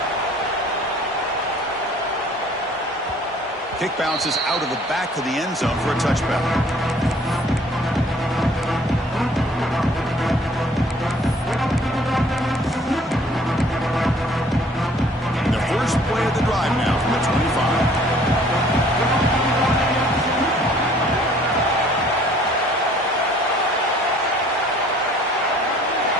Kick bounces out of the back of the end zone for a touchback. First play of the drive now from the 25.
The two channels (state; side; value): normal; both; correlation 0.56